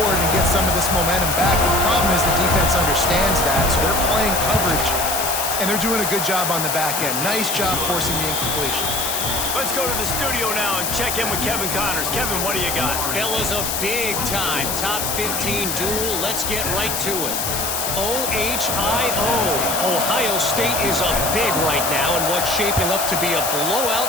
and get some of this momentum back. But the problem is the defense understands that, so they're playing coverage, and they're doing a good job on the back end. Nice job forcing the incompletion. Let's go to the studio now and check in with Kevin Connors. Kevin, what do you got? Fellas, a big-time top 15 duel. Let's get right to it. OHIO. Ohio State is up big right now in what's shaping up to be a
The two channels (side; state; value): left; noise; hiss, 1 dB below the sound